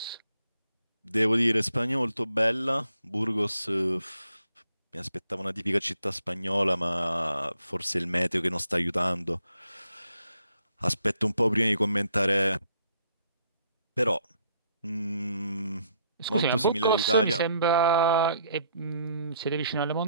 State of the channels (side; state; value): both; inverted; correlation -0.69